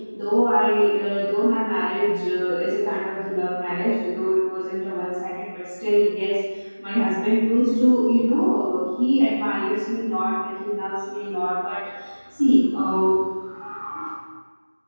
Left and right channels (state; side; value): inverted; both; correlation -1.00